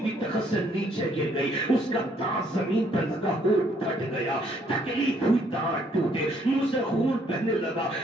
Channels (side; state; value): both; normal; correlation 0.67